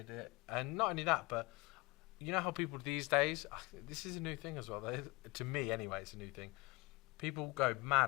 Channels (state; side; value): quieter; right; 24.2 dB